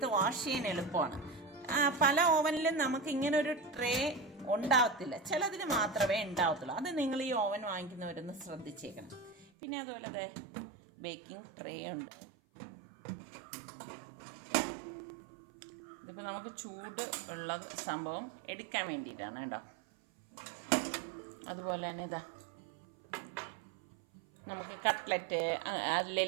വാഷ് ചെയ്യാൻ എളുപ്പമാണ്. പല ഓവനിലും നമുക്ക് ഇങ്ങനെ ഒരു ട്രേ ഉണ്ടാവത്തില്ല, ചിലതിൽ മാത്രമേ ഉണ്ടാവത്തുള്ളൂ. അത് നിങ്ങൾ ഈ ഓവൻ വാങ്ങിക്കുന്നവരൊന്ന് ശ്രദ്ധിച്ചേക്കണം. പിന്നെ അതുപോലെ ബേക്കിംഗ് ട്രേ ഉണ്ട്. ഇതിപ്പോൾ നമുക്ക് ചൂട് ഉള്ള സംഭവം എടുക്കാൻ വേണ്ടിയിട്ടാണ് കേട്ടോ. അതുപോലെ തന്നെ ഇതാ നമുക്ക് കട്ട്ലറ്റ്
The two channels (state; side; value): drops out; left; at 9.5 s